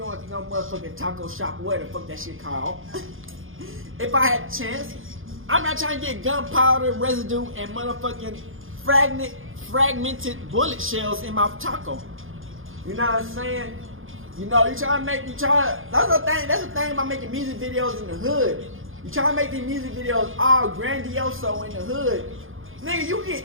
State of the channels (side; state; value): left; late; 0.59 ms